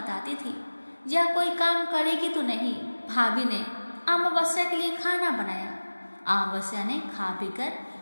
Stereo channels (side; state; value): both; inverted; correlation -1.00